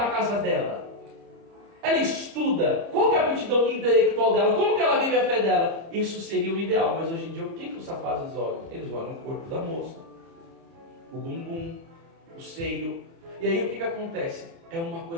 casa dela? Ela estuda. Qual que é a aptidão intelectual dela? Como que ela vive a fé dela? Isso seria o ideal. Mas hoje em dia, o que os rapazes olham? Eles olham o corpo da moça, o bumbum, o seio. E aí o que acontece? É uma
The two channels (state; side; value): late; left; 30 ms